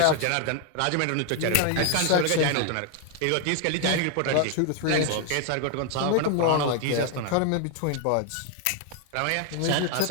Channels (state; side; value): different; both; correlation 0.00